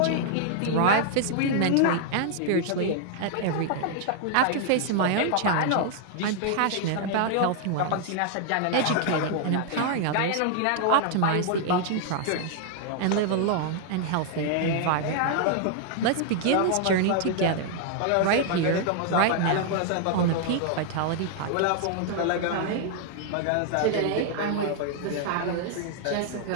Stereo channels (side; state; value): both; different; correlation 0.00